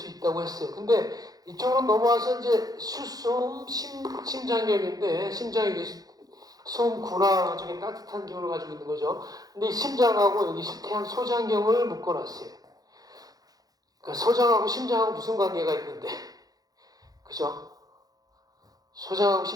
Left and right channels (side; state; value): left; late; 0.18 ms